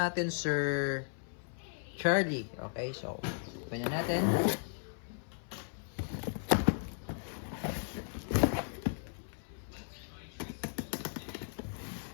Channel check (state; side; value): silent; right; 54 dB below the other